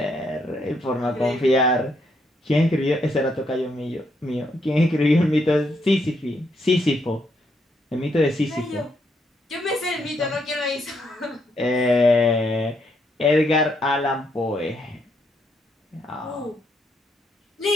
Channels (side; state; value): both; normal; correlation 0.75